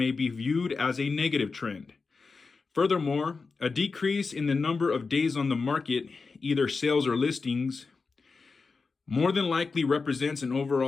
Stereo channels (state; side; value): quieter; right; 4.4 dB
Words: be viewed as a negative trend. Furthermore, a decrease in the number of days on the market, either sales or listings, more than likely represents an